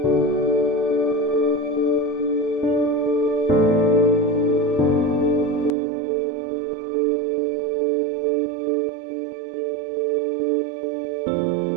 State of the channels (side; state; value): left; drops out; at 5.8 s